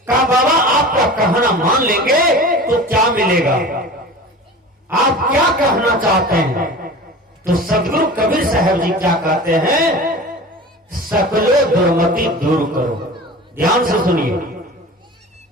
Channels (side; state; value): both; normal; correlation 0.36